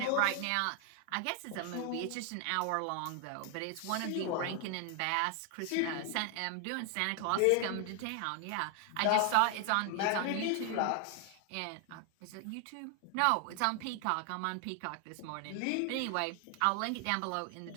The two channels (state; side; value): different; both; correlation 0.00